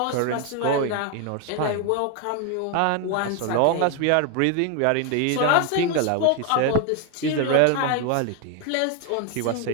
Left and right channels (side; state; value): both; different; correlation 0.01